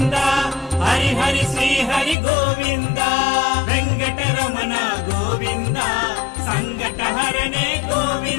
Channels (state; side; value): drops out; right; at 2.1 s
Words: హరి హరి శ్రీ హరి గోవింద. వెంకటరమణ గోవింద సంకటహరణే